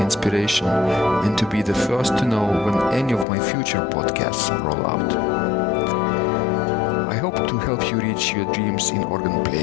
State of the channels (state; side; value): drops out; right; at 3.2 s